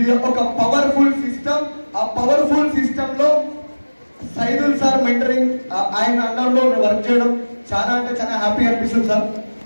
ఒక పవర్ఫుల్ సిస్టమ్. ఆ పవర్ఫుల్ సిస్టమ్ లో సైదుల్ సార్ మెంటరింగ్ ఆయన అండర్లో వర్క్ చేయడం చాలా అంటే చాలా హ్యాపీ అనిపిస్తుంది సార్.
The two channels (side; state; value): both; inverted; correlation -1.00